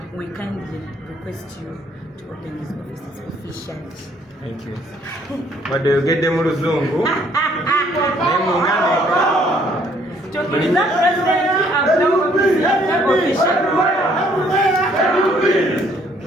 we kindly request you to open these offices officially. Thank you. What do you get them Muzungu?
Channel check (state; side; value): normal; both; correlation 0.64